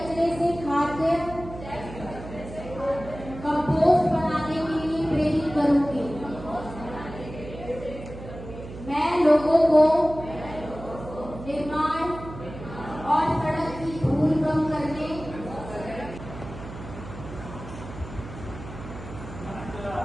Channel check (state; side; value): noise; right; hum, 12 dB below the sound